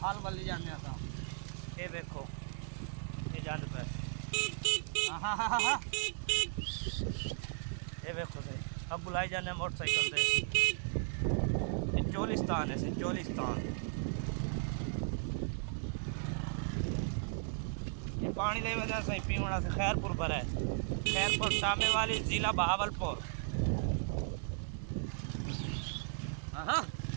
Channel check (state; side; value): silent; left; digital silence